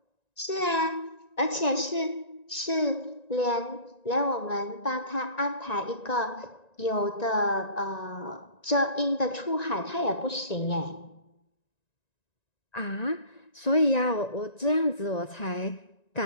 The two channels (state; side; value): late; right; 1.9 ms